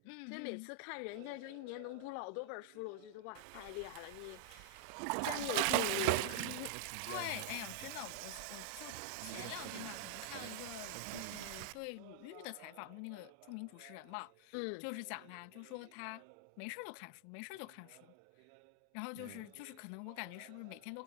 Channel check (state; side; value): different; both; correlation -0.01